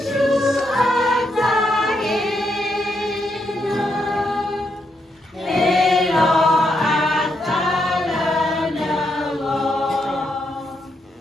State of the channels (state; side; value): normal; both; correlation 0.80